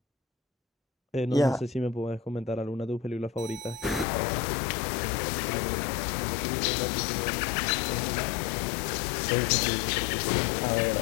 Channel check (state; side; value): drops out; right; at 4.0 s